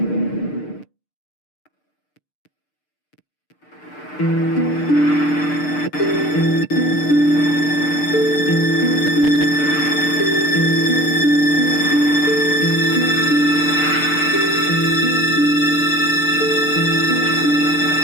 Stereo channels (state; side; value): late; right; 6.7 ms